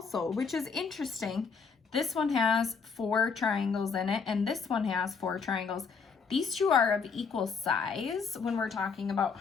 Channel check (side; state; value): right; quieter; 5.5 dB